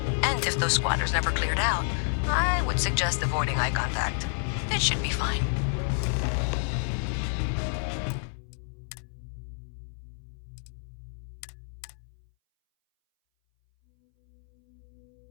And if those squatters never cleared out, I would suggest avoiding eye contact. It should be fine.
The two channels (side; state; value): right; silent; 58 dB below the other